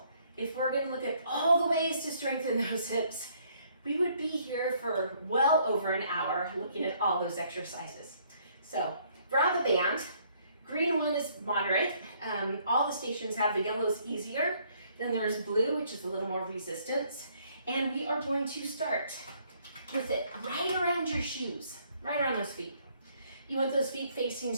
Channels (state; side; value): inverted; both; correlation -0.65